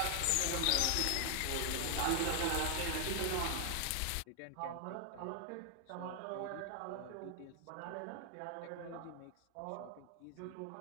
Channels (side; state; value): both; different; correlation 0.00